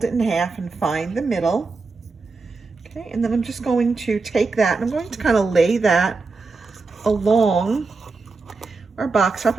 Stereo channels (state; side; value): quieter; left; 4.0 dB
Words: it in half and find the middle. Okay, and then I'm just going to take that and I'm going to kind of lay that along our box top.